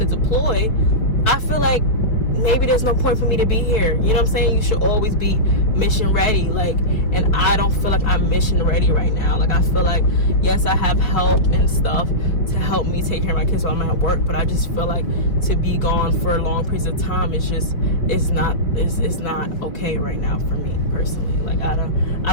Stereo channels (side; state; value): right; late; 4.8 ms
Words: to deploy, I feel like maybe there's no point for me to be here. You know what I'm saying? You should always be mission ready. Like, and I don't feel like I'm mission ready right now. Like, I feel like, yes, I have help and stuff to help me take care of my kids while I'm at work, but I just feel like to be gone for long periods of time, it's not okay right now for me personally. Like, I